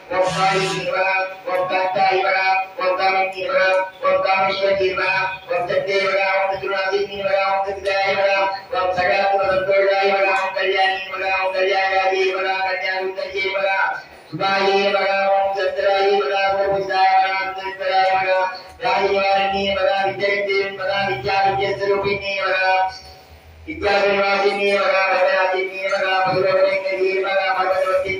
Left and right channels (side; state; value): both; identical; correlation 1.00